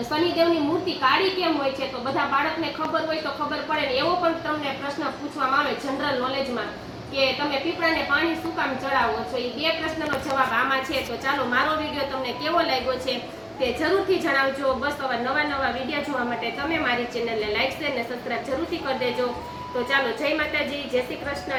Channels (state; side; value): identical; both; correlation 1.00